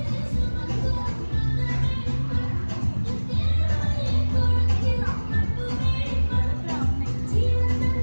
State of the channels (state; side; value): inverted; both; correlation -1.00